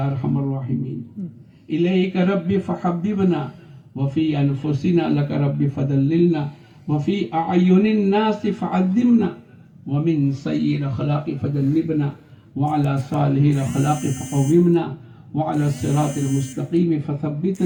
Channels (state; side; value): identical; both; correlation 1.00